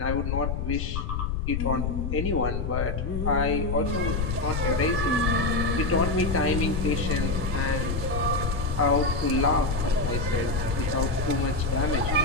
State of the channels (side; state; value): left; noise; rumble, 1 dB below the sound